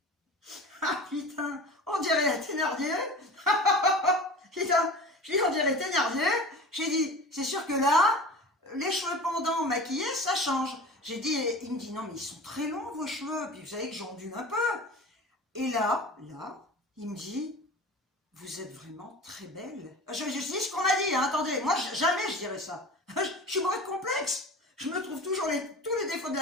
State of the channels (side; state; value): both; normal; correlation 0.36